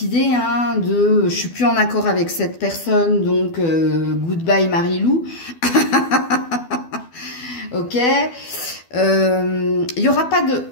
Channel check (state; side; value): late; right; 12 ms